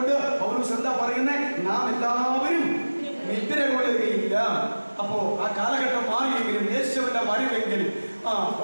പൗലോസ് എന്താ പറയുന്നത്? നാം എല്ലാവരും നിദ്ര കൊള്ളുകയില്ല. അപ്പോ ആ കാലഘട്ടം മാറിയെങ്കിലും യേശുവിന്റെ വരവെങ്കിൽ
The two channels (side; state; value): both; inverted; correlation -1.00